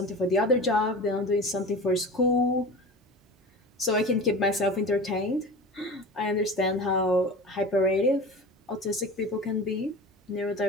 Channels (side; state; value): both; normal; correlation 0.34